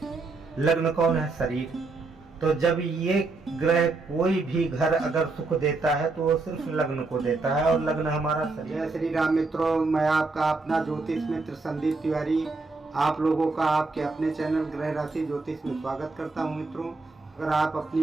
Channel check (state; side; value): quieter; left; 3.7 dB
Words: लग्न कौन है? शरीर। तो जब ये ग्रह कोई भी घर अगर सुख देता है तो वो सिर्फ लग्न को देता है, और लग्न हमारा शरीर। जय श्री राम मित्रों, मैं आपका अपना ज्योतिष मित्र संदीप तिवारी आप लोगों का आपके अपने चैनल ग्रह राशि ज्योतिष में स्वागत करता हूं। मित्रों, अगर आप